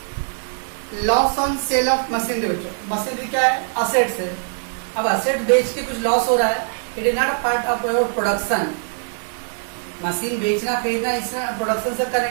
Loss on sale of machinery बच्चों। Machinery क्या है? Assets है। अब asset बेच के कुछ loss हो रहा है, it is not a part of your production. Machine बेचना खरीदना इसमें प्रोडक्शन से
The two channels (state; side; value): silent; left; digital silence